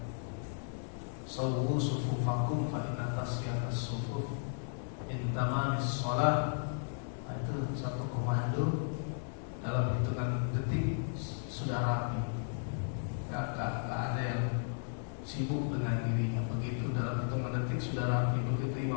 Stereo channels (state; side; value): silent; right; digital silence